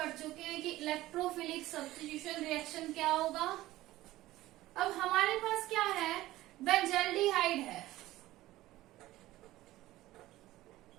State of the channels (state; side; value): quieter; left; 16.5 dB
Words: चुके हैं कि इलेक्ट्रोफिलिक सब्स्टिट्यूशन रिएक्शन क्या होगा। अब हमारे पास क्या है? बेंजल्डिहाइड है।